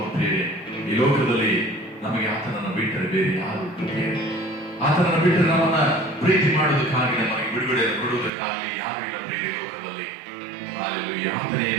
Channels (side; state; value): left; drops out; at 8.3 s